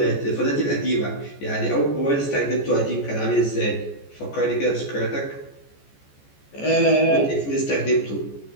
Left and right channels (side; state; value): right; late; 14 ms